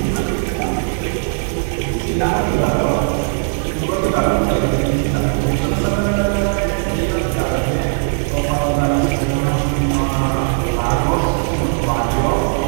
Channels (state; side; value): silent; left; 67 dB below the other